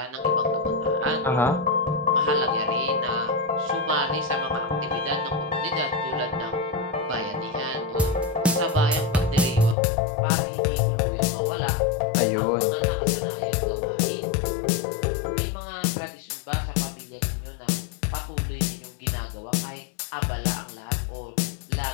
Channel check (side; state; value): right; drops out; at 9.8 s